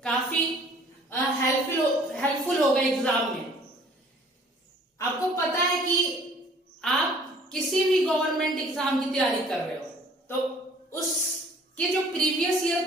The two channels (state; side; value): normal; both; correlation 0.54